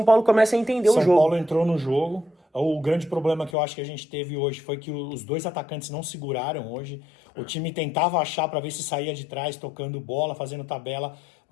Paulo começa a entender o jogo. São Paulo entrou no jogo. O grande problema que eu acho que a gente teve hoje foi que os dois atacantes não seguraram hoje. O time tentava achar para ver se saía de trás, tocando bola, fazendo tabela,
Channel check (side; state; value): right; drops out; at 3.6 s